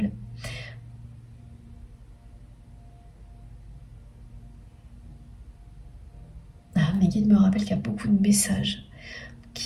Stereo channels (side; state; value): both; identical; correlation 1.00